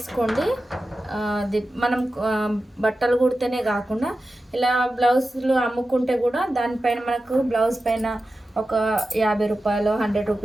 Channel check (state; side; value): normal; both; correlation 0.93